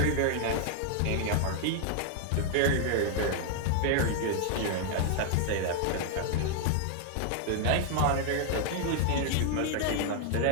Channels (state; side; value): different; both; correlation 0.00